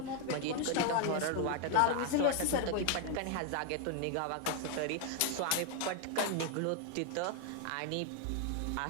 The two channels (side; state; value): both; different; correlation 0.00